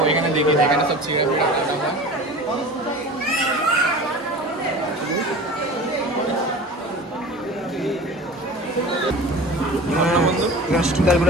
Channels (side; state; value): both; normal; correlation 0.37